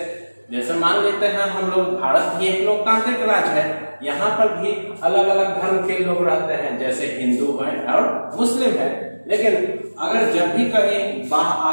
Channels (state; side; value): inverted; both; correlation -1.00